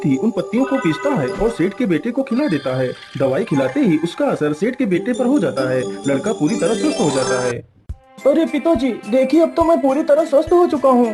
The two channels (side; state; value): both; identical; correlation 1.00